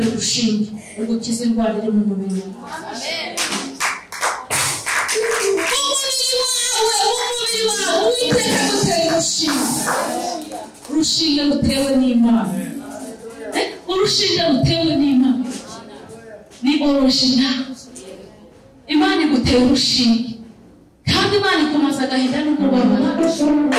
urushinge ugukiza indwara iri mu mubiri wawe. Umubiri wawe Uwiteka agutera urushinge rutewe n'Imana. Urushinge rutewe n'Imana ni original. Imana igutera urushinge, kandi Imana ikumaza agahinda n'umubabaro.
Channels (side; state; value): both; identical; correlation 1.00